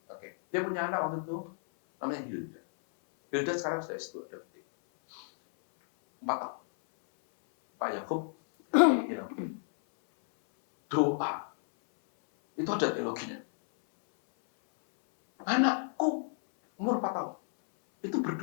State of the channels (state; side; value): silent; right; 57 dB below the other